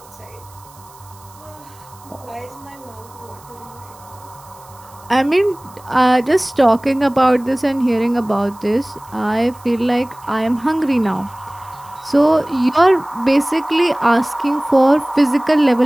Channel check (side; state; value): right; noise; hiss, 25 dB below the sound